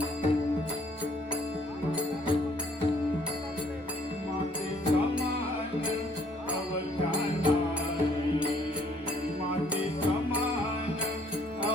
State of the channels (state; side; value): normal; both; correlation 0.63